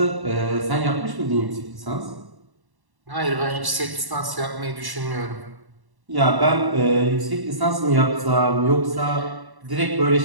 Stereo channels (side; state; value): left; late; 1.1 ms